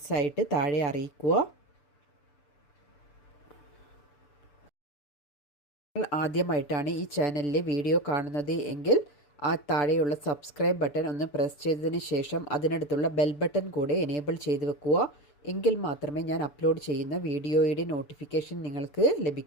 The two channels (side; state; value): right; late; 6.9 ms